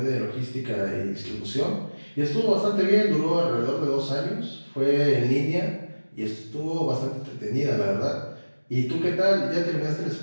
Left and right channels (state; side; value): inverted; both; correlation -1.00